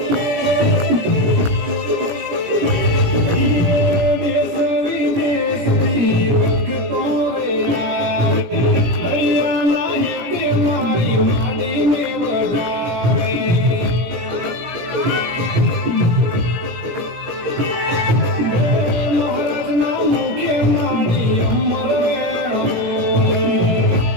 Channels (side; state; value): left; late; 17 ms